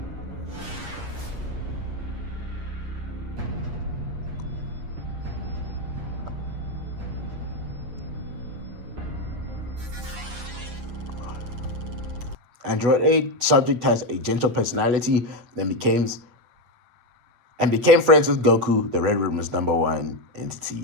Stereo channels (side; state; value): left; late; 8.3 ms